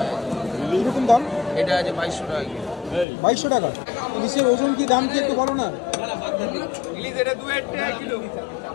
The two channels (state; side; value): drops out; right; at 3.1 s